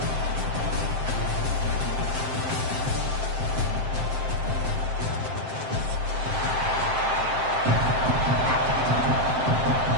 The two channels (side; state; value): left; late; 7.7 ms